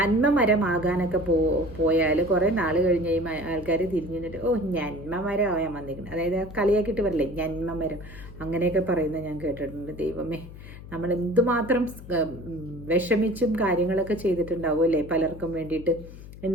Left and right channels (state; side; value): noise; left; hum, 15 dB below the sound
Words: മരമാകാനൊക്കെ പോയാൽ കുറേ നാൾ കഴിഞ്ഞ് ആൾക്കാർ തിരിഞ്ഞു നിന്നിട്ട് ഓ നന്മ മരമായാൽ വന്നിരിക്കുന്നത്, അതായത് കളിയാക്കിയിട്ട് വരില്ലേ നന്മ മരം, അങ്ങനെയൊക്കെ പറയുന്നത് ഞാൻ കേട്ടിട്ടുണ്ട്. ദൈവമേ, നമ്മൾ എന്തുമാത്രം വിഷമിച്ചും കാര്യങ്ങളൊക്കെ ചെയ്തിട്ടുണ്ടാവും അല്ലേ പലർക്കും വേണ്ടിയിട്ട്.